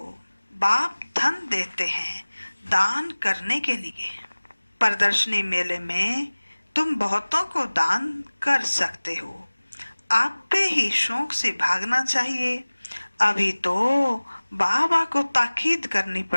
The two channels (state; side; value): inverted; both; correlation -1.00